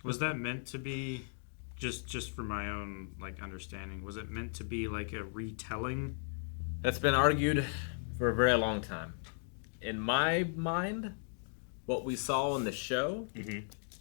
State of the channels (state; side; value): silent; right; digital silence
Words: Was that meant to be, just for my own understanding, was it meant to be like a retelling? That's been argued for a very long time. In my mind, what we saw in the show